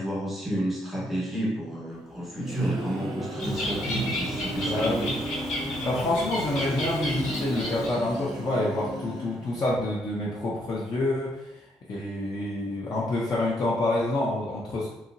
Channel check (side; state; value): both; normal; correlation 0.73